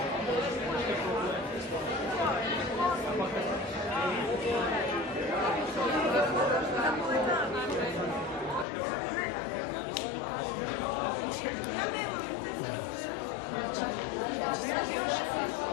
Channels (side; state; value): right; drops out; at 8.7 s